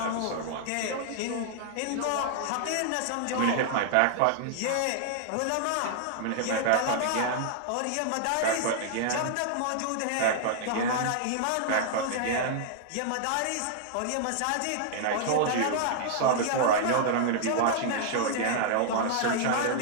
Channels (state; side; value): different; both; correlation -0.01